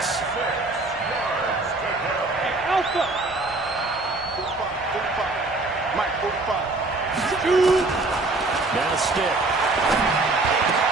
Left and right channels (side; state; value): left; quieter; 3.2 dB